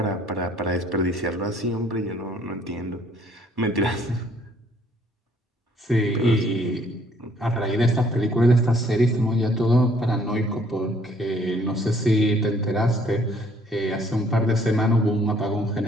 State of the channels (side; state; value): both; normal; correlation 0.62